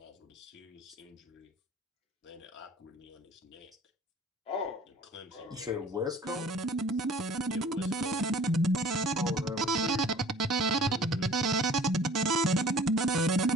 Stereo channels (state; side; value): normal; both; correlation 0.47